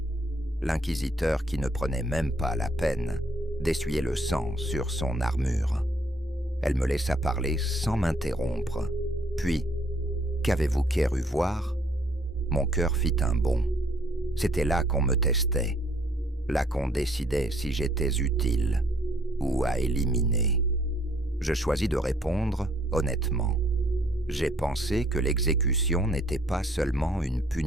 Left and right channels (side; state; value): both; normal; correlation 0.65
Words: L'inquisiteur qui ne prenait même pas la peine d'essuyer le sang sur son armure. Elle me laissa parler sans m'interrompre. Puis, qu'avez-vous cru voir ? Mon cœur fit un bond. C'était là qu'on me testait, là qu'on décidait si j'étais utile ou à éliminer. Je choisis de répondre honnêtement. J'ai pensé que l'exécution n'était pas seulement une